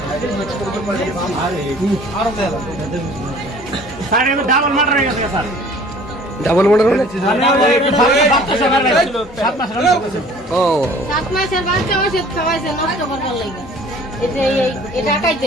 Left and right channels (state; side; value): normal; both; correlation 0.50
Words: স্যার আমি ডাবল মার্ডার হয়ে গেছে স্যার। ডাবল মার্ডার মানে? ও 7 মাসের বাচ্চা ওষুধ খাওয়াইছে নষ্ট করবার লাগা। এটা